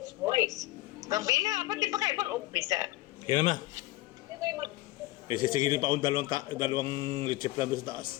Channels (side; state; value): right; quieter; 18.3 dB